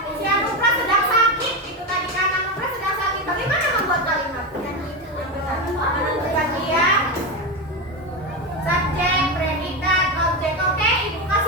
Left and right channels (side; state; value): both; normal; correlation 0.15